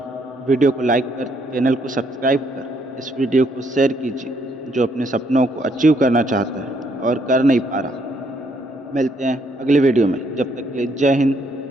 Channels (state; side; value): normal; both; correlation 0.71